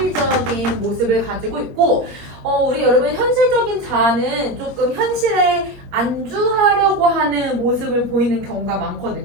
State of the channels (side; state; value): left; late; 21 ms